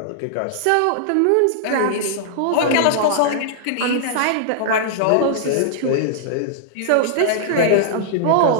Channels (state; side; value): different; both; correlation -0.01